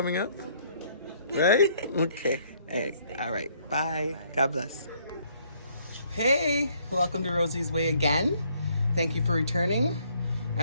up. Right? Okay. All right. Bye. God bless. Hey, welcome to Rosie's Way again. Thank you for returning.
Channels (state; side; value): inverted; both; correlation -0.66